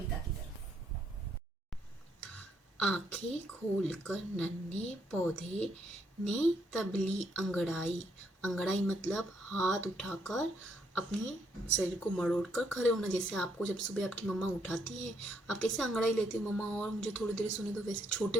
की तरफ। आंखें खोलकर नन्हे पौधे ने तबली अंगड़ाई। अंगड़ाई मतलब हाथ उठाकर अपने शरीर को मरोड़कर खड़े होना। जैसे आपको जब सुबह आपकी मम्मा उठाती है, आप कैसे अंगड़ाई लेते हो मम्मा, और मुझे थोड़ी देर सुने दो, वैसे छोटे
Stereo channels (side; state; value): both; normal; correlation 0.73